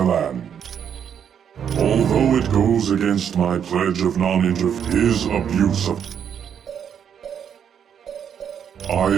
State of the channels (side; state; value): left; quieter; 8.3 dB